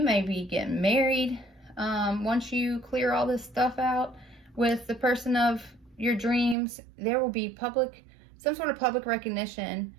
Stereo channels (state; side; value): drops out; left; at 6.6 s